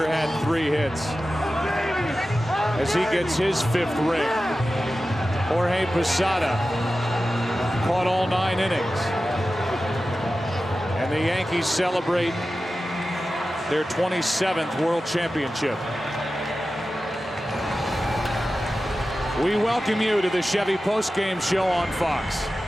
had 3 hits as he gets his 5th ring. Jorge Posada caught all 9 innings. And the Yankees celebrate their 27th World Championship. We welcome you to the Chevy postgame show on Fox.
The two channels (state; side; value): normal; both; correlation 0.94